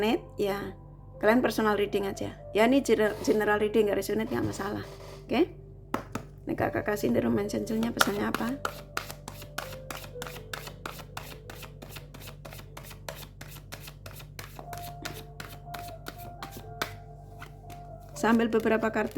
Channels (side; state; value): both; identical; correlation 1.00